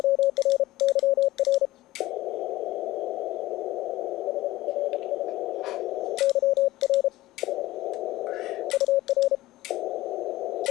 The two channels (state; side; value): quieter; right; 16.9 dB